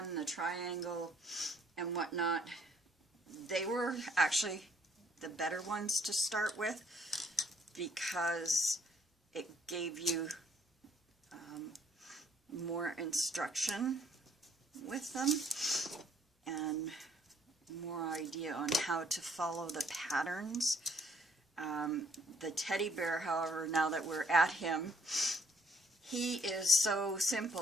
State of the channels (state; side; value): normal; both; correlation 0.64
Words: the triangle, and whatnot, they were actually the better ones to start with because it gave you more instruction with them and more idea on how to follow the patterns. The teddy bear, however, now that we're at him, he is so